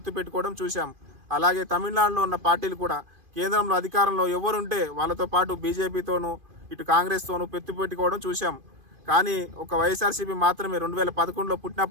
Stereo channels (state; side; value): late; left; 2.5 ms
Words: పెట్టుకోవడం చూసాం. అలాగే తమిళనాడులో ఉన్న పార్టీలు కూడా కేంద్రంలో అధికారంలో ఎవరుంటే వాళ్ళతో పాటు బీజేపీతోనూ, ఇటు కాంగ్రెస్తోనూ పొత్తు పెట్టుకోవడం చూసాం. కానీ ఒక వైఎస్ఆర్సీపీ మాత్రమే 2011లో